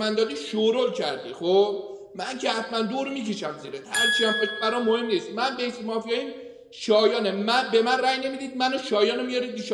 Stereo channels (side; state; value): both; identical; correlation 1.00